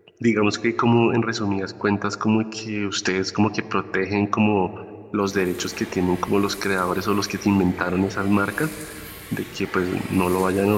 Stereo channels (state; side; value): identical; both; correlation 1.00